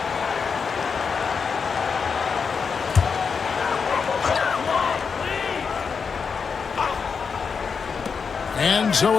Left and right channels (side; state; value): right; quieter; 5.7 dB